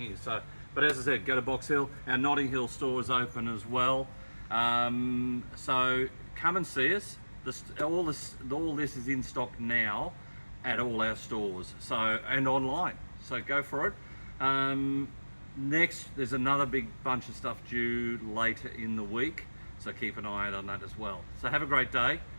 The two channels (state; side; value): inverted; both; correlation -1.00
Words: So, but as I said, go to Box Hill. Our Notting Hill store is open as well. So come and see us. All this is in stock now at all our stores. So, and online. So go for it. Next, there's another big bunch of stuff due later in the week. So keep an eye out on that as well. So have a great day.